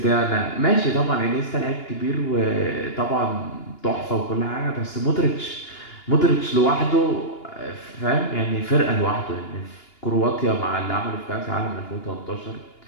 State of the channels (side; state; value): right; late; 2.9 ms